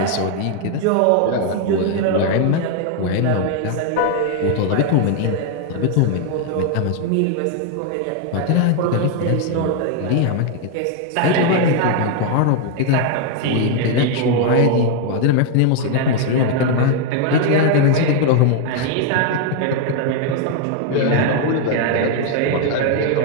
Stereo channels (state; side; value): different; both; correlation 0.00